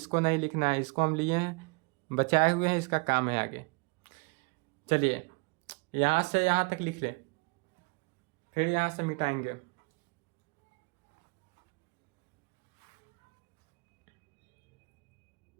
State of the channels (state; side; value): quieter; left; 32.7 dB